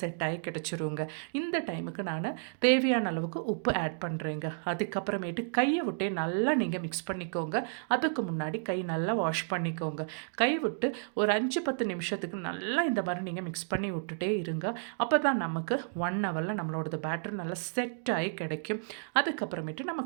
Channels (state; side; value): silent; left; digital silence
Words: செட் ஆகி கிடச்சிருங்க. இந்த டைமுக்கு நான் தேவையான அளவுக்கு உப்பு ஆட் பண்ணுறேங்க. அதுக்கப்புறமேட்டு கையை விட்டே நல்லா நீங்கள் மிக்ஸ் பண்ணிக்கோங்க. அதுக்கு முன்னாடி கை நல்லா வாஷ் பண்ணிக்கோங்க. கை விட்டு ஒரு 5-10 நிமிஷத்துக்கு நல்லா இந்த மாதிரி நீங்கள் மிக்ஸ் பண்ணி விட்டுட்டே இருங்க. அப்போ தான் நமக்கு 1 ஹவரில் நம்மளோட பேட்டர் நல்லா செட் ஆகி கிடைக்கும். அதுக்கப்புறமேட்டு நம்ம